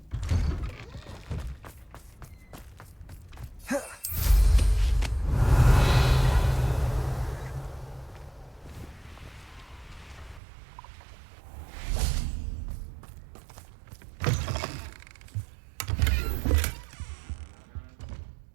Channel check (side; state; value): left; drops out; at 10.4 s